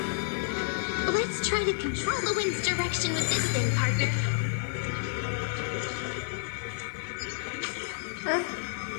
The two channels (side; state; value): right; silent; digital silence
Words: Let's try to control the wind's direction with this thing, partner.